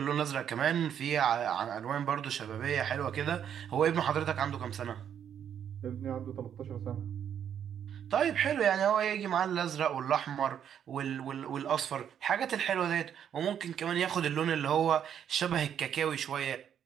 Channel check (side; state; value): left; quieter; 9.0 dB